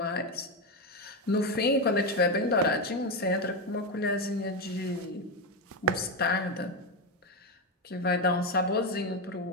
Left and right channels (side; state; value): both; normal; correlation 0.10